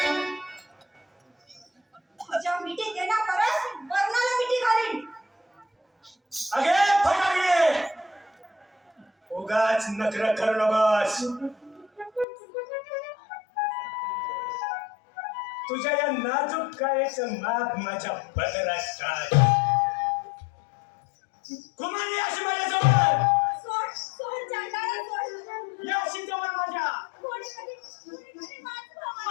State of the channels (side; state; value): right; drops out; at 12.2 s